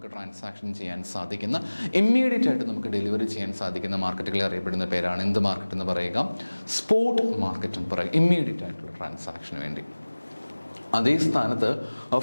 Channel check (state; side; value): inverted; both; correlation -1.00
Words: ട്രാൻസാക്ഷൻ ചെയ്യാൻ സാധിക്കുന്ന, ഇമ്മീഡിയറ്റ് ആയിട്ട് നമുക്ക് ഡെലിവറി ചെയ്യാൻ സാധിക്കുന്ന മാർക്കറ്റുകളെ അറിയപ്പെടുന്ന പേരാണ് എന്ത് മാർക്കറ്റ് എന്ന് പറയുക? സ്പോട്ട് മാർക്കറ്റ് എന്ന് പറയുക, ഇമ്മീഡിയറ്റ് ആയിട്ടുള്ള ട്രാൻസാക്ഷന് വേണ്ടി. അതേ സ്ഥാനത്ത്